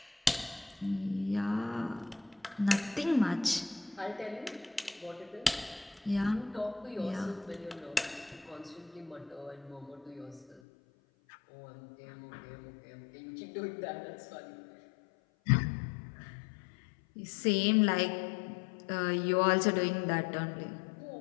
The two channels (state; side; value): drops out; right; at 10.6 s